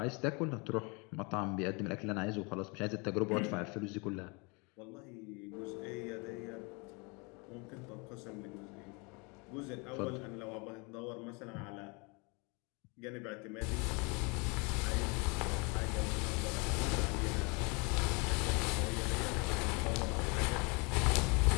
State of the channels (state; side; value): quieter; right; 30.4 dB